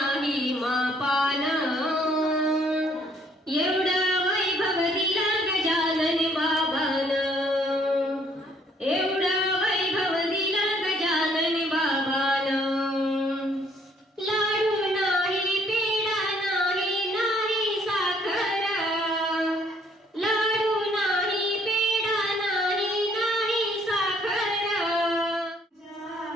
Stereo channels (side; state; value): both; normal; correlation 0.64